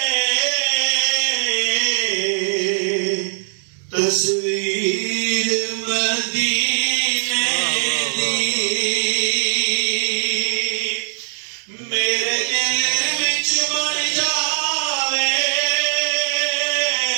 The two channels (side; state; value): left; silent; 66 dB below the other